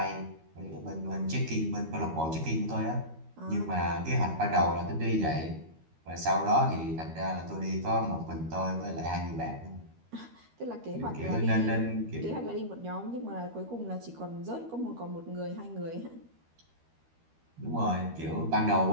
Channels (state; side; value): late; left; 13 ms